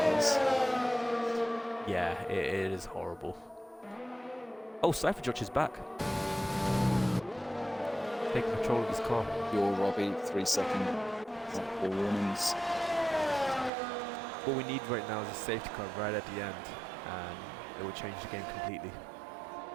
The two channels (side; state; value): left; drops out; at 13.7 s